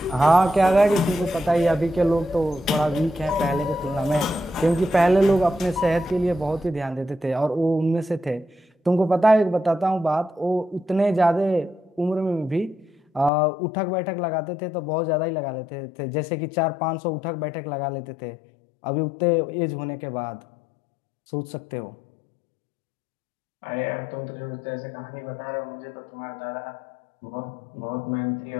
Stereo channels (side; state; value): right; drops out; at 13.3 s